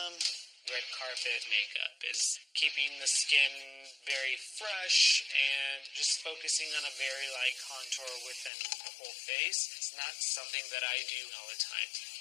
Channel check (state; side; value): drops out; right; at 8.5 s